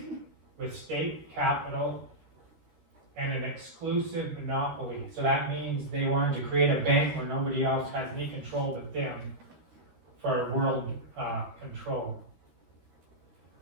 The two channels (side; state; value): left; late; 13 ms